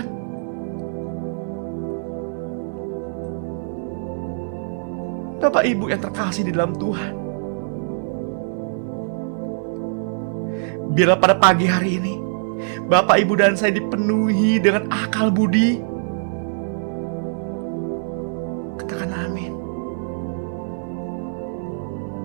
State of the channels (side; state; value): left; silent; digital silence